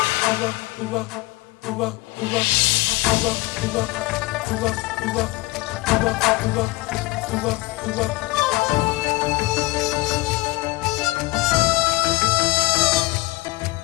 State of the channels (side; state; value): right; quieter; 21.5 dB